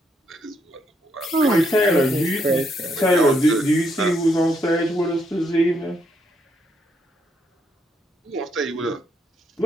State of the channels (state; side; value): normal; both; correlation 0.75